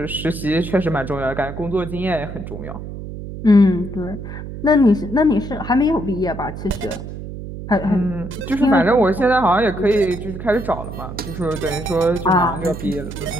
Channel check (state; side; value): noise; right; hum, 9 dB below the sound